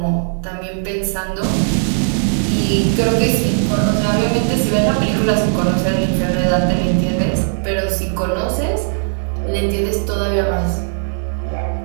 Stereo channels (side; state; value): left; silent; digital silence